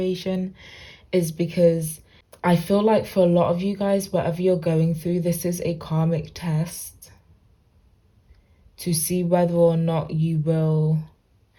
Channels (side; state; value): both; identical; correlation 1.00